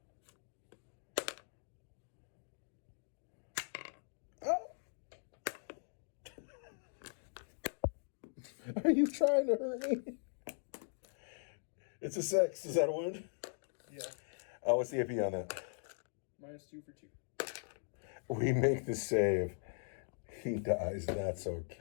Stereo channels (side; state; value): right; silent; digital silence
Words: Oh. Are you trying to hurt me? It's a 6. Is that a wound? Yeah. Oh, what's the AP on that? -2 for 2. We make the save. He dies. That's